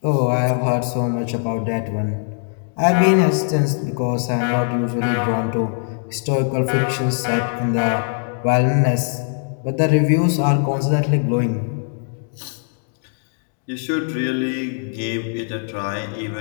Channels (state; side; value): silent; right; 65 dB below the other